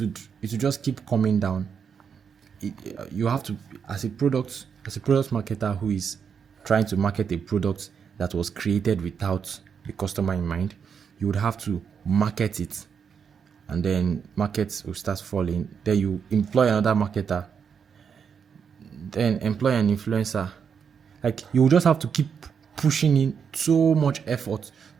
just keep coming down. You have to, as a product marketer who is trying to market a product that was created without the customer in mind, you would have to market it, and then markets will start falling. Then you employ another marketer, then employ an influencer. Like, you will just have to keep pushing in so much effort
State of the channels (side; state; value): left; quieter; 6.8 dB